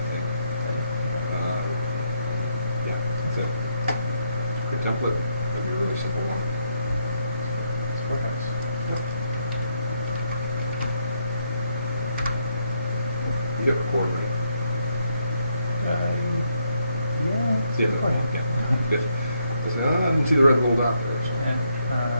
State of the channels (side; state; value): both; inverted; correlation -0.76